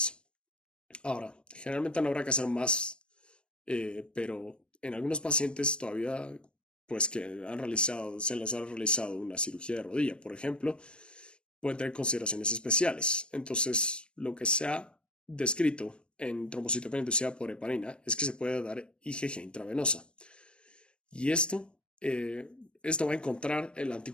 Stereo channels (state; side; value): late; right; 0.054 ms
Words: Ahora, generalmente no habrá que hacer más, pero en algunos pacientes todavía, pues que se les ha realizado una cirugía de rodilla, por ejemplo, pueden tener consideraciones especiales. Entonces, lo que se ha descrito en trombocitopenia inducida por heparina es que se puede dar IgG intravenosa. Y esto va a encontrar el